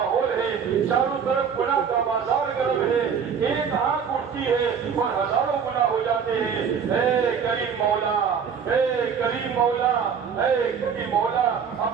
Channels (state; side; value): quieter; left; 6.9 dB